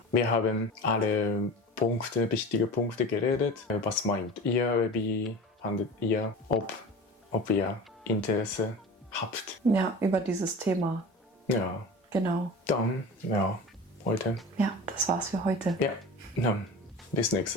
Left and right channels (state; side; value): normal; both; correlation 0.34